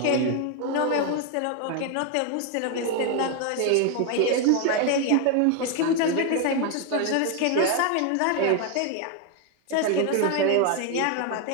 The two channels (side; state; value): both; different; correlation 0.01